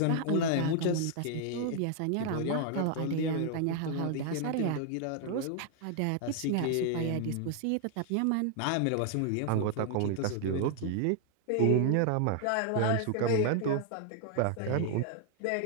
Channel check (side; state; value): both; different; correlation 0.00